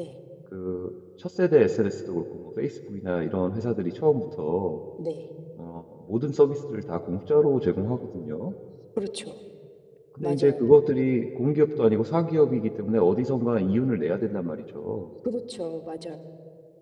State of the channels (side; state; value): both; identical; correlation 1.00